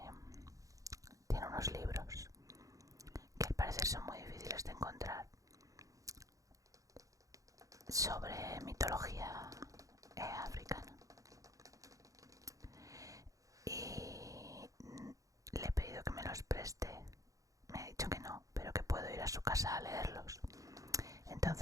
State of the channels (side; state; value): left; late; 0.16 ms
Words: unos libros que al parecer son muy difíciles de encontrar sobre mitología africana. Y le he pedido que me los preste. Me ha dicho que no, pero que puedo ir a su casa a leerlos.